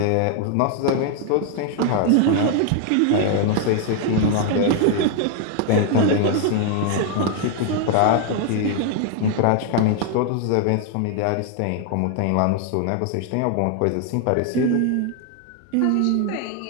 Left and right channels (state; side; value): different; both; correlation 0.00